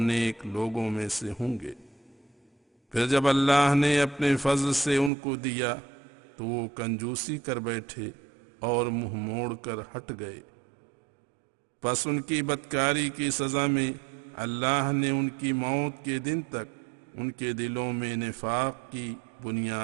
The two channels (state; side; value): drops out; left; at 5.1 s